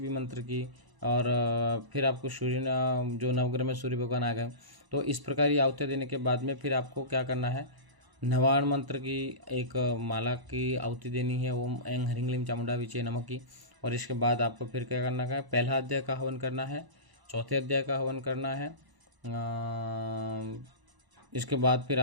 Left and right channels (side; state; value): left; late; 1.0 ms